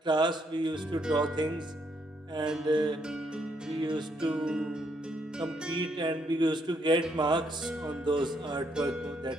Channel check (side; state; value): both; normal; correlation 0.73